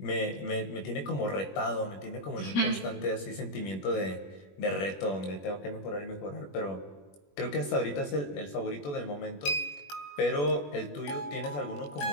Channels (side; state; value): right; late; 21 ms